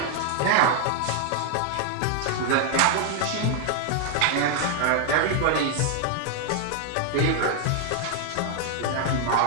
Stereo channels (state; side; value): different; both; correlation 0.00